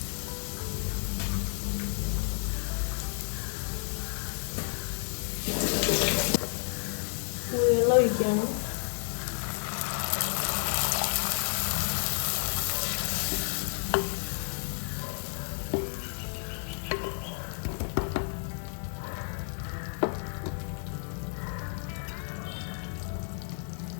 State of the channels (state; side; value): silent; right; 57 dB below the other